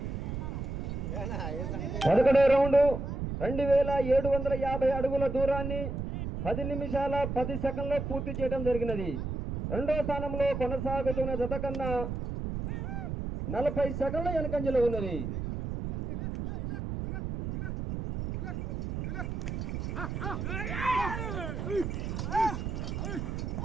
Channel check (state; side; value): noise; right; rumble, 4 dB below the sound